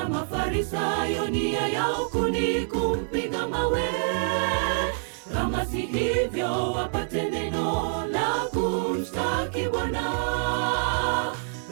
Mafarisayo nia yao ni kumpiga mawe. Kama si hivyo wapate neno la kumshtaki Bwana.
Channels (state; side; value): silent; left; 61 dB below the other